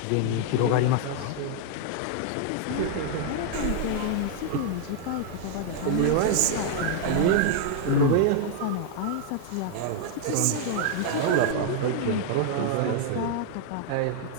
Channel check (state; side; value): different; both; correlation 0.00